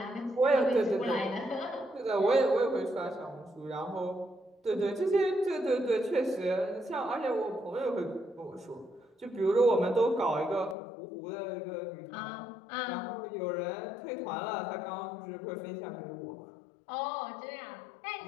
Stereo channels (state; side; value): drops out; right; at 10.8 s